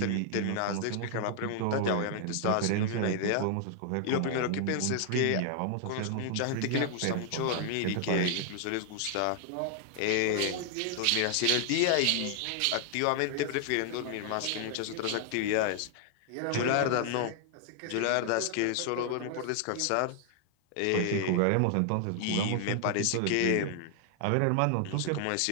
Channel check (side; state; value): both; different; correlation 0.00